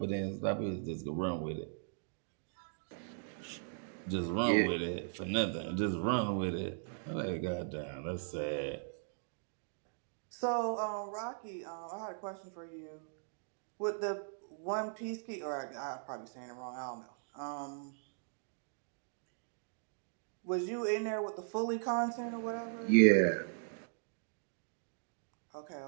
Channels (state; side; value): silent; left; digital silence